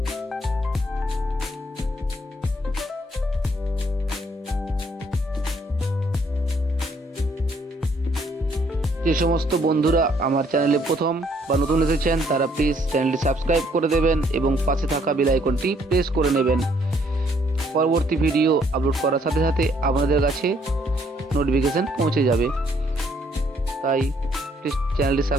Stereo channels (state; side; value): normal; both; correlation 0.67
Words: যে সমস্ত বন্ধুরা আমার চ্যানেলে প্রথম বা নতুন এসেছেন তারা প্লিজ চ্যানেলটি সাবস্ক্রাইব করে দেবেন এবং পাশে থাকা বেল আইকনটি প্রেস করে নেবেন। পরবর্তী ভিডিও আপলোড করার সাথে সাথে আপনাদের কাছে নোটিফিকেশন পৌঁছে যাবে। তাই প্লিজ চ্যানেলটি